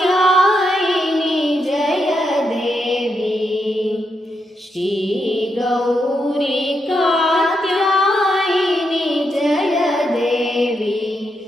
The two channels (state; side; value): normal; both; correlation 0.82